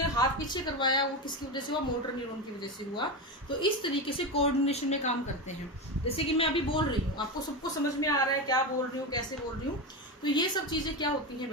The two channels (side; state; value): both; normal; correlation 0.17